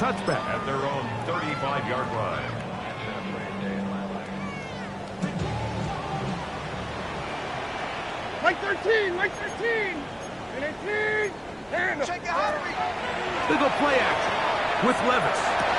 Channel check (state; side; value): identical; both; correlation 1.00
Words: touchback. At their own 35-yard line. Mike 13, Mike 13. And 18. And They go play action with Levis.